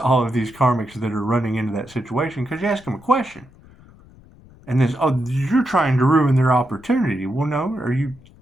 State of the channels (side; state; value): left; noise; rumble, 25 dB below the sound